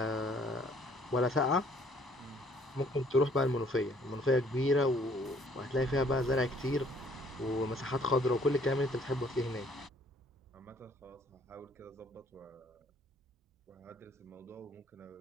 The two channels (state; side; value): normal; both; correlation 0.61